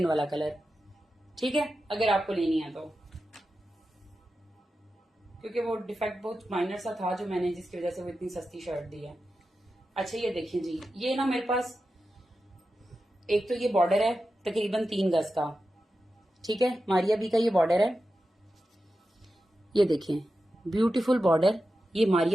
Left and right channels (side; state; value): both; normal; correlation 0.91